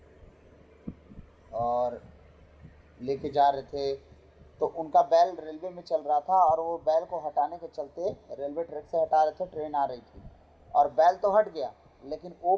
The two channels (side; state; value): both; identical; correlation 1.00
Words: और लेके जा रहे थे तो उनका बैल रेलवे में चल रहा था और वो बैल को हटाने के चलते रेलवे ट्रैक से हटा रहे थे, ट्रेन आ रही थी और बैल तो हट गया लेकिन वो